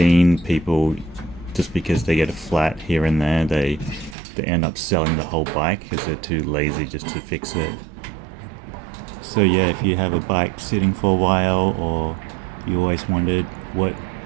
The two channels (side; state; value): left; drops out; at 4.2 s